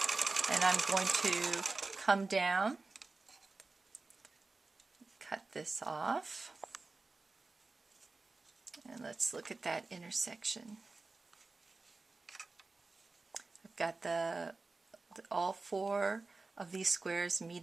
and I'm going to come down, cut this off, and let's look at that intersection. I've got all 4 of these squares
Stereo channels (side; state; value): left; quieter; 3.7 dB